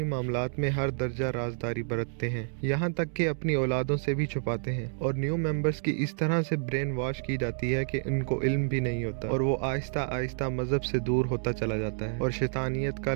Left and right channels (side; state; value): left; silent; digital silence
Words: मामलात में हर दर्जा राजदारी बरतते हैं, यहाँ तक कि अपनी औलादों से भी छुपाते हैं। और न्यू मेंबर्स की इस तरह से ब्रेन वॉश की जाती है कि इनको इल्म भी नहीं होता और वो आहिस्ता आहिस्ता मज़हब से दूर होता चला जाता है और शैतानियत का